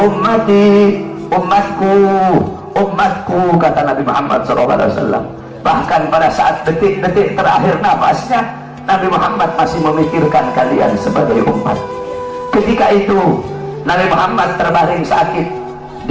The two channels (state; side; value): identical; both; correlation 1.00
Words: umatku, umatku, kata Nabi Muhammad SAW. Bahkan pada saat detik-detik terakhir nafasnya, Nabi Muhammad masih memikirkan kalian sebagai umat. Ketika itu Nabi Muhammad terbaring sakit